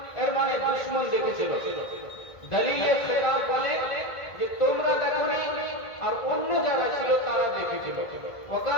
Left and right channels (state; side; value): late; right; 2.0 ms